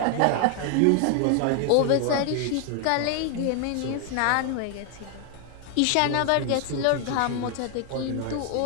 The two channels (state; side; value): different; both; correlation 0.00